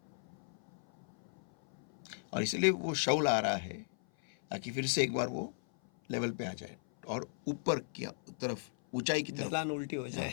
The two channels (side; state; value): right; silent; 54 dB below the other